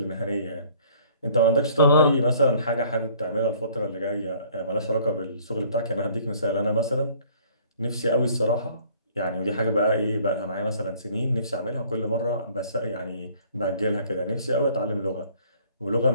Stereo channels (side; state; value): both; inverted; correlation -0.56